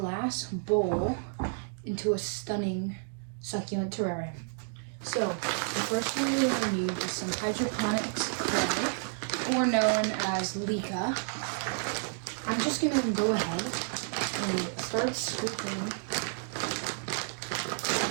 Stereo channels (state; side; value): silent; left; 57 dB below the other